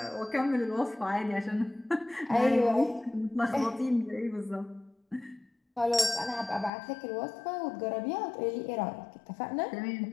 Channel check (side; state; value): right; drops out; at 6.7 s